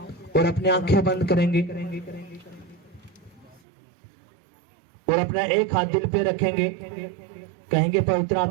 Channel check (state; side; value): drops out; left; at 3.6 s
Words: और अपनी आंखें बंद करेंगे और अपना एक हाथ दिल पे रखेंगे। कहेंगे, पवित्र